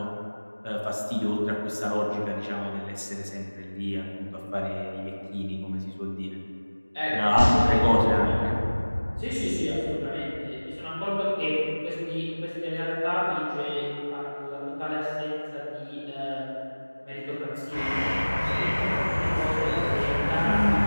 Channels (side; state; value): both; inverted; correlation -1.00